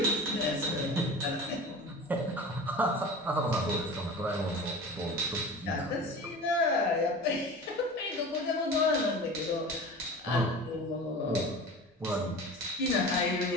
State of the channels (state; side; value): normal; both; correlation 0.35